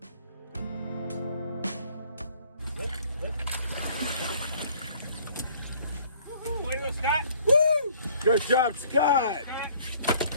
Way to go, Scott. Woo! Good job, Scott.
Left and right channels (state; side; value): inverted; both; correlation -0.57